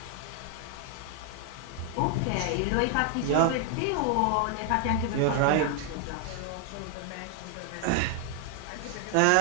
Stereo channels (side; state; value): both; different; correlation 0.00